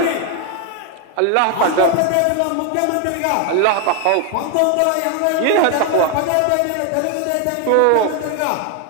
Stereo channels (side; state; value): both; different; correlation 0.01